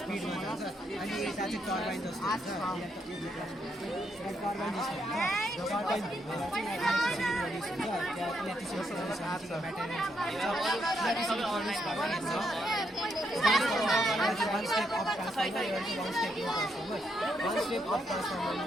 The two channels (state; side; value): normal; both; correlation 0.78